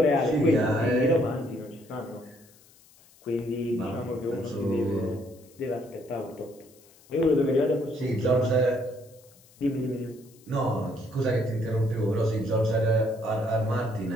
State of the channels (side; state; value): left; noise; hiss, 27 dB below the sound